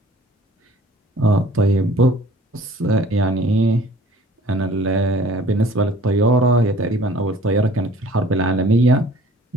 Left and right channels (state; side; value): normal; both; correlation 0.52